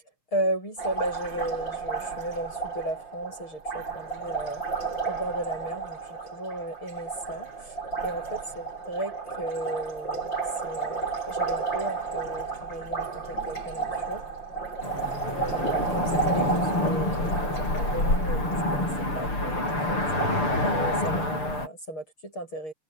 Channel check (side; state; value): right; late; 6.8 ms